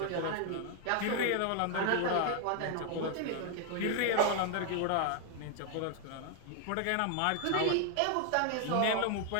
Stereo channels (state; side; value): different; both; correlation 0.00